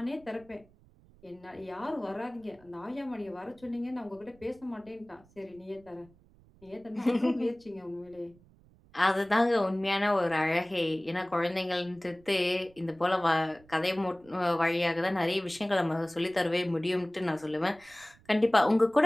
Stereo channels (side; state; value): right; noise; rumble, 28 dB below the sound